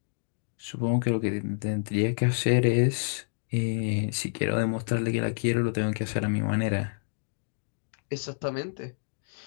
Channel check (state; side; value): silent; right; digital silence